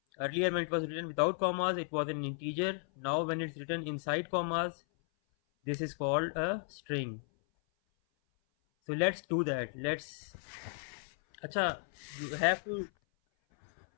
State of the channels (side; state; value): right; silent; 55 dB below the other